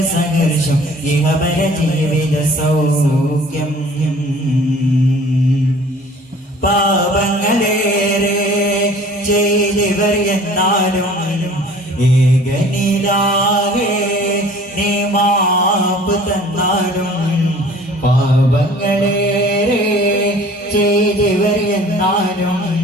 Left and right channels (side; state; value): both; normal; correlation 0.49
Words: സഹർഷം ഇഹപര ജീവിത സൗഖ്യം പാപങ്ങളേറെ ചെയ്തവർ എന്നാലും ഏകനിലാകെ നീ മാപ്പ് തന്നാലും പാപങ്ങളേറെ ചെയ്തവർ എന്നാലും